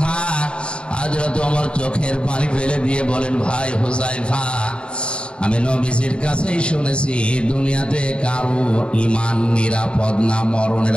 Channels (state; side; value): late; right; 0.054 ms